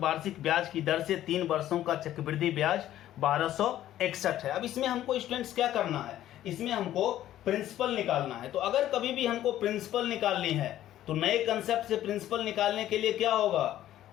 ब्याज की दर से 3 वर्षों का चक्रवृद्धि ब्याज 1261 है। अब इसमें हमको स्टूडेंट्स क्या करना है, इसमें हमको प्रिंसिपल निकालना है। तो अगर कभी भी हमको प्रिंसिपल निकालनी है तो नए कंसेप्ट से प्रिंसिपल निकालने के लिए क्या होगा,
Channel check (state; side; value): quieter; right; 12.8 dB